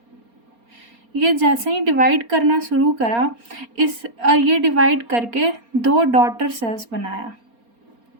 ये जैसे ही डिवाइड करना शुरू करा ये डिवाइड करके दो डॉटर सेल्स बनाया.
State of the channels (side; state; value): left; late; 4.3 ms